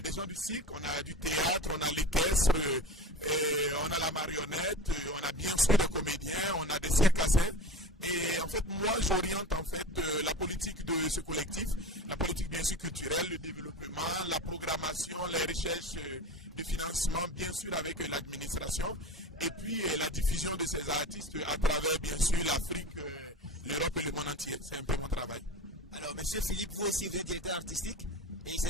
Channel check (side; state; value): both; normal; correlation 0.31